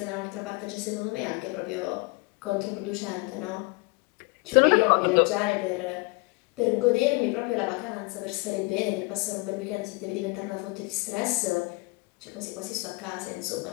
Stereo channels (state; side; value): quieter; right; 25.8 dB